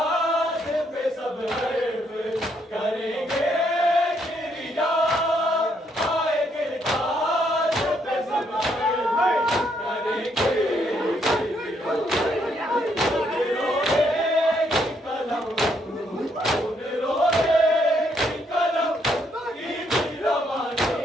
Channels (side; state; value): both; normal; correlation 0.73